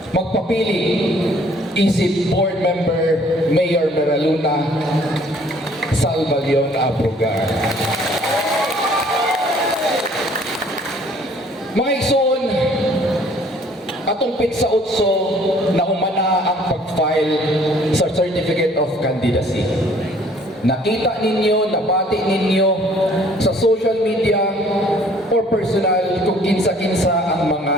magpapili, isip board member Mayor Meraluna Salvaglion Abrogar. Mga igsoon, atong pitsa utso na humana ang pag-file sa Certificate of Candidacy. Nakita ninyo, nabati ninyo sa social media or personal kung kinsa-kinsa ang mga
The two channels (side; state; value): both; normal; correlation 0.57